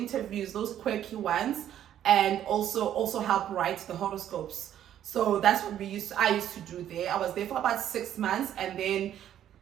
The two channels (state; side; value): quieter; left; 10.9 dB